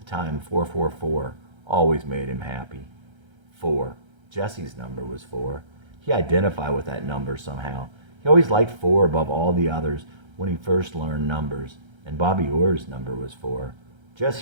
time 444 always made him happy. 4. Jesse's number was 4. He identified with that number somehow. He always liked 4 above all the others when he first learned numbers, and Bobby Orr's number was 4.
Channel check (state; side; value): late; left; 1.3 ms